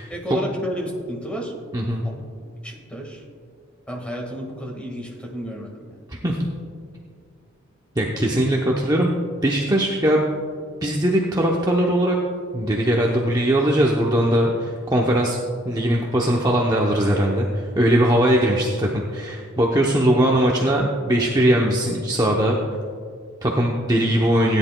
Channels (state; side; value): normal; both; correlation 0.67